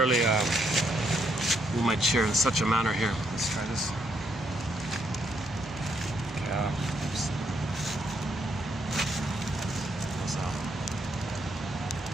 move my chair in such a manner here. Let's try this.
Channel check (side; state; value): both; normal; correlation 0.75